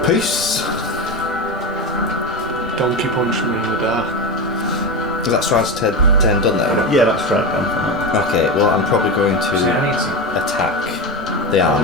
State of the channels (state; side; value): normal; both; correlation 0.19